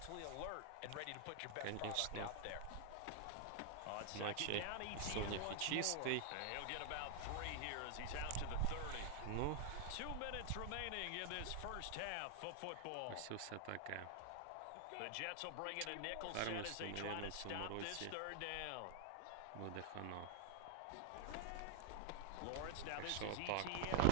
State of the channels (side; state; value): both; different; correlation 0.00